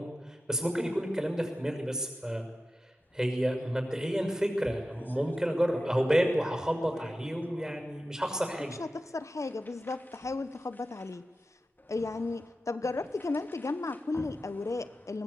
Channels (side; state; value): both; normal; correlation 0.92